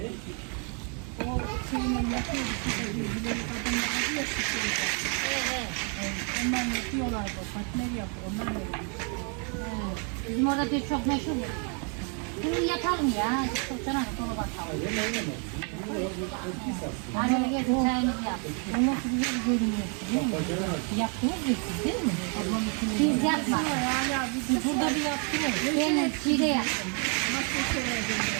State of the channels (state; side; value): quieter; left; 39.0 dB